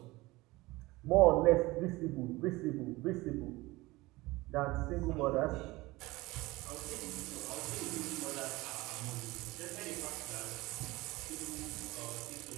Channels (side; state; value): left; quieter; 20.8 dB